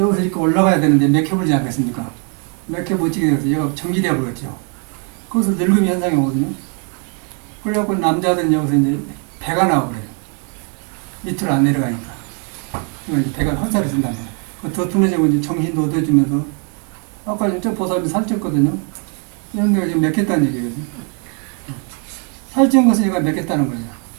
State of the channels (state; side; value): quieter; left; 39.1 dB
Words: 이렇게 올라가야 되는데 맥혀버리지 않겠습니까? 맥혀 못 지게 돼서 얘가 정지되어 버렸죠. 그것을 늙음이 현상이 오거든요. 그래갖고 남자들은 여기서 이제 배가 나와 그래요. 밑으로 안 내려가니까. 이제 배가 헛살이 된단 말이에요. 더 둔해지고 이제 정신도 얻어지면서 아까 저 보살이 살쪘거든요. 이런 데가 지금 맥혔다는 얘기거든요. 살찐 것을 얘가 맥혔다는 거예요.